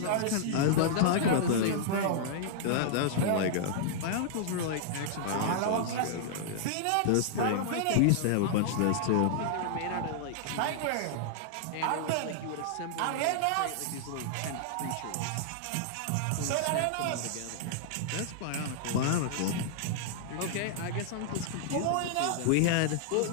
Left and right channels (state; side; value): different; both; correlation -0.01